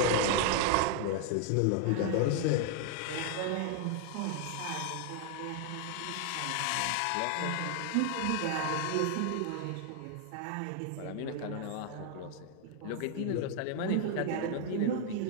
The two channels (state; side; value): different; both; correlation 0.00